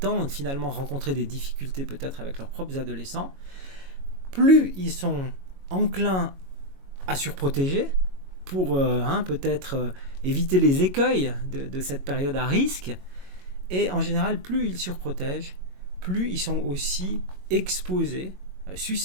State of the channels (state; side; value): late; left; 22 ms